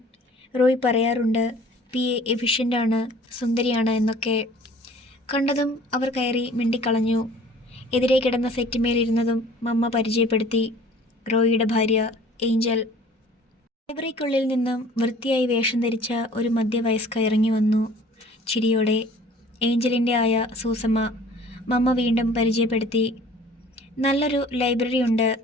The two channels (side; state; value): both; normal; correlation 0.50